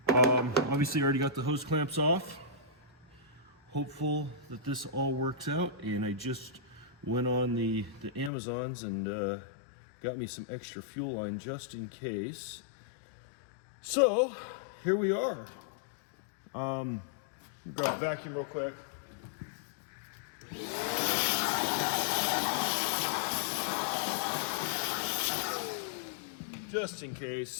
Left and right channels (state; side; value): drops out; right; at 8.3 s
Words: Obviously, I already got the hose clamps off. Hopeful that this all works out. And I just went on the Amazons and got me some extra fuel line just in case. So here we are. Grab a vacuum real quick. Just in